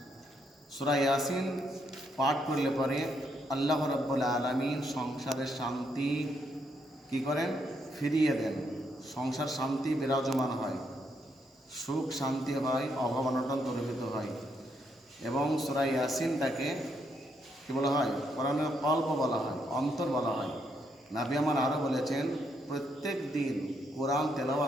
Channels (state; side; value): normal; both; correlation 0.76